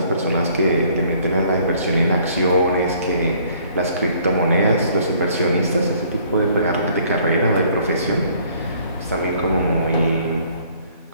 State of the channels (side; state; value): both; inverted; correlation -0.60